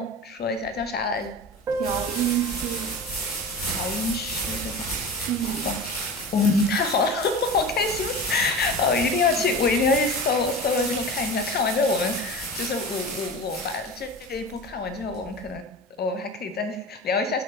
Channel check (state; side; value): normal; both; correlation 0.31